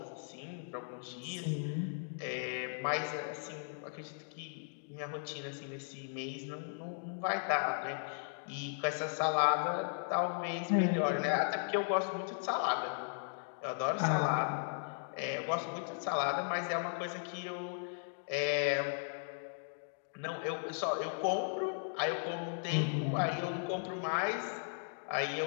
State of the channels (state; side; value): silent; right; digital silence